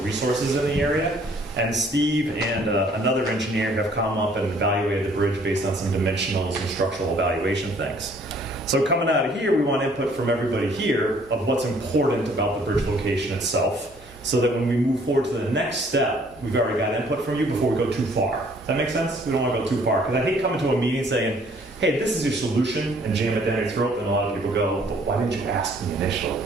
resources in the area. And Steve and another engineer have come up and evaluated the bridge based on some dimensionals and structural evaluation things. So coming out of here, we want input from everybody here of what's important about the bridge location itself, so that when we move forward to the next step, we've already got input from you before we go too far. Does that make sense? We don't want to go too far, because I hate coming to a meeting saying, hey, this is your solution, and jam it down your throat, and a lot of people go, but why didn't you ask me initially?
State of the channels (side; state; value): both; normal; correlation 0.60